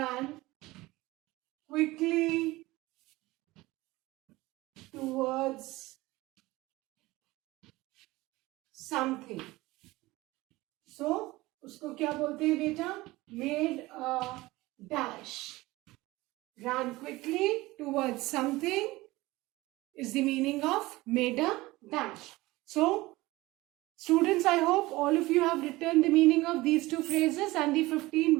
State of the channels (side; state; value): left; quieter; 19.8 dB